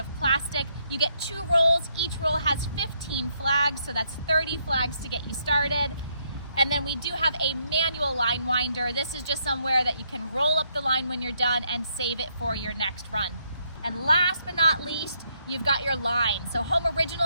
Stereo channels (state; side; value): inverted; both; correlation -0.74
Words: plastic. You get 2 rolls. Each roll has 15 flags, so that's 30 flags to get you started. And then we do have a manual line winder. This is just somewhere that you can roll up the line when you're done and save it for your next run. And last but not least, you've got your line. So Home